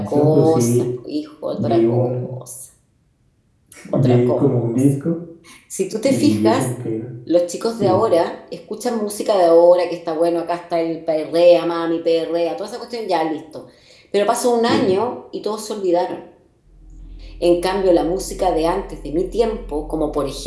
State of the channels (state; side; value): identical; both; correlation 1.00